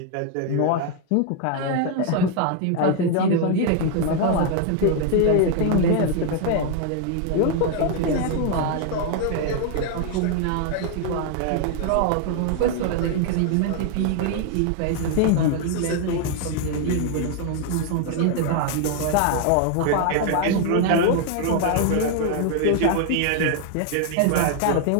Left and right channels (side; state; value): both; different; correlation 0.00